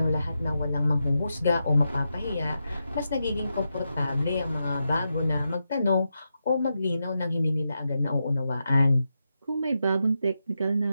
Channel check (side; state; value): both; inverted; correlation -0.87